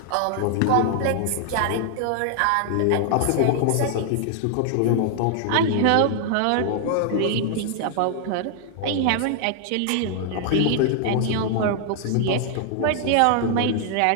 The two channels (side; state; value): both; different; correlation 0.00